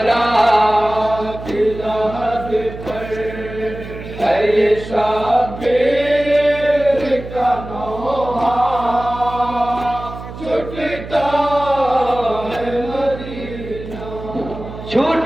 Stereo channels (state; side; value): noise; right; hum, 12 dB below the sound